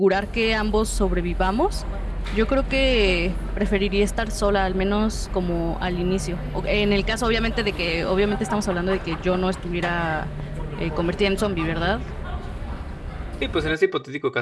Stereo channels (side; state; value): both; identical; correlation 1.00